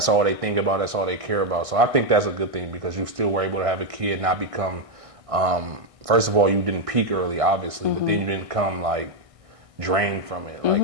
all they think about, that's all they care about. So I think that's a good thing, because you still were able to have a kid not become, first of all, you didn't peak early, obviously, but then you didn't come like drained from it. Like,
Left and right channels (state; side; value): late; left; 1.6 ms